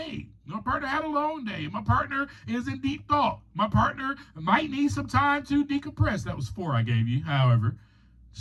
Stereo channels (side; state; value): both; identical; correlation 1.00